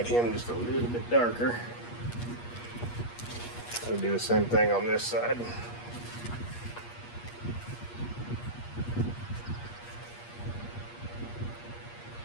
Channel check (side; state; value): right; late; 8.4 ms